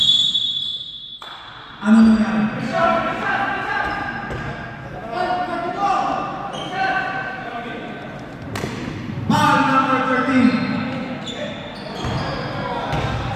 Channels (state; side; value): identical; both; correlation 1.00